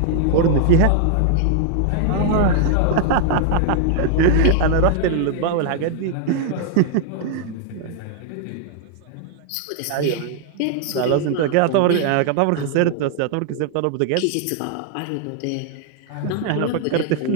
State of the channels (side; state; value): both; different; correlation 0.00